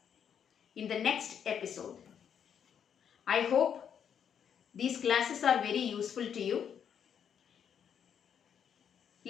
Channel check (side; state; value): right; quieter; 8.2 dB